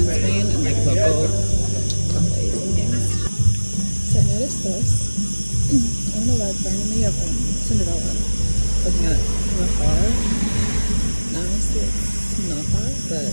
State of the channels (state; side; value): inverted; both; correlation -1.00